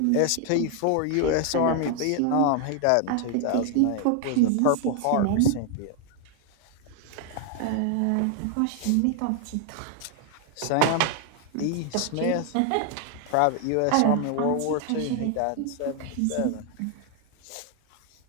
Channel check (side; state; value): both; different; correlation 0.00